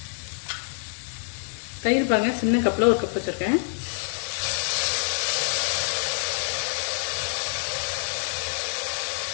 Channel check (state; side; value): silent; right; digital silence